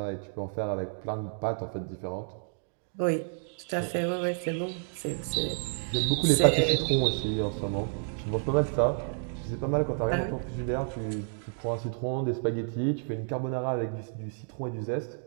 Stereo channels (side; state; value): left; silent; 57 dB below the other